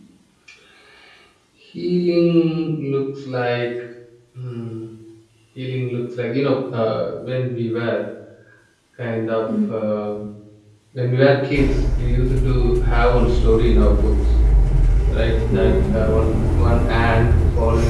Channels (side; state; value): both; identical; correlation 1.00